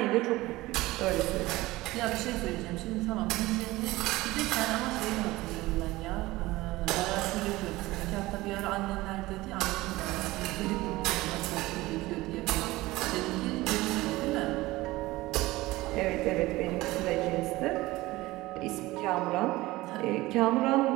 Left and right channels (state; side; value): quieter; left; 19.0 dB